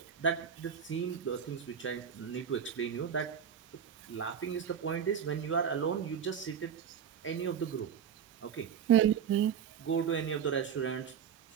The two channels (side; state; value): left; quieter; 7.9 dB